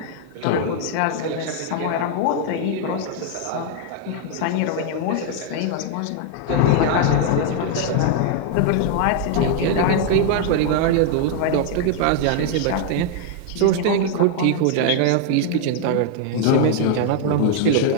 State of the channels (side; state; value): both; different; correlation 0.00